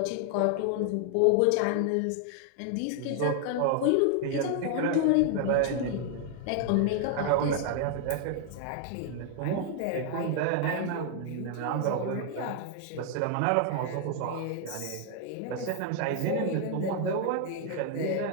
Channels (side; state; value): both; different; correlation 0.00